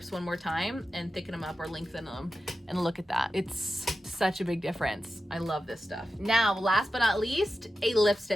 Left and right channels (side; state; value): both; normal; correlation 0.92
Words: one more time and thicken them up or lengthen them. And look at that. It's such a big difference. I love this stuff. Now, last but not least, a